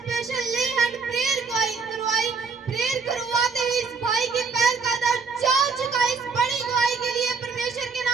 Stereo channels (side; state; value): left; quieter; 5.0 dB